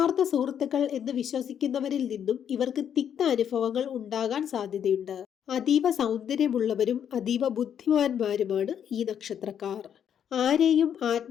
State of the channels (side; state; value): right; quieter; 8.8 dB